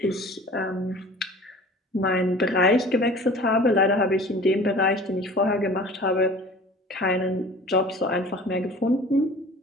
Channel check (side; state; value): both; normal; correlation 0.43